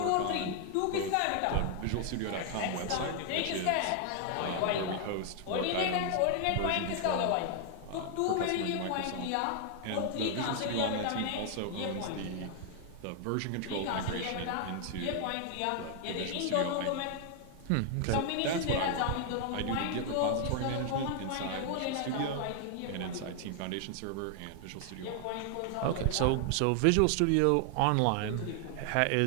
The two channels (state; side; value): different; both; correlation 0.00